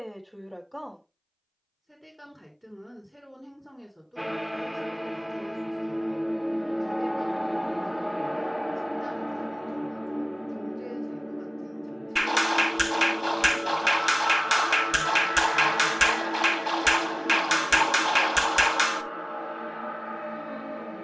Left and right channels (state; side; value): identical; both; correlation 1.00